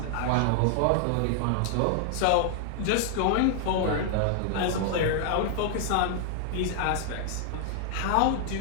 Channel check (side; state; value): both; different; correlation 0.00